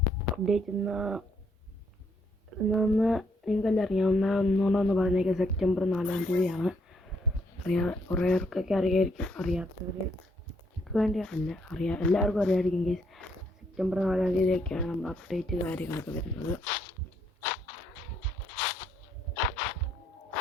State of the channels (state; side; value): normal; both; correlation 0.71